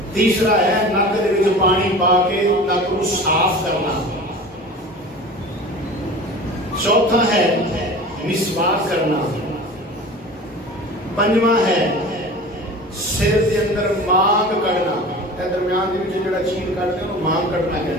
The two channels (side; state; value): both; normal; correlation 0.37